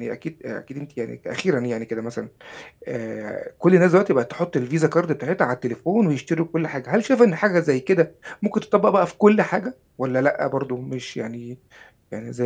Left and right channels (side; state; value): both; identical; correlation 1.00